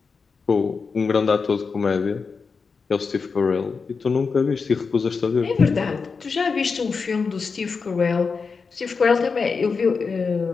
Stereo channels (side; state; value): right; quieter; 5.0 dB